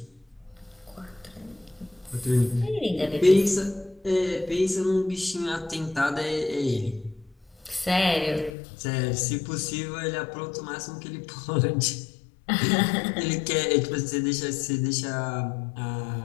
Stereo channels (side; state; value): right; drops out; at 8.5 s